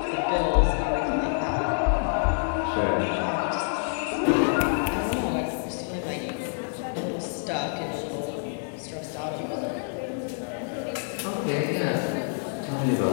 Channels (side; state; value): right; silent; digital silence